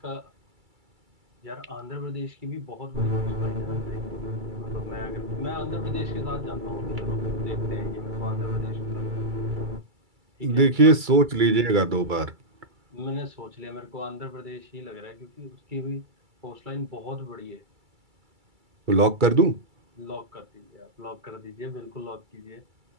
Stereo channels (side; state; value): left; late; 2.3 ms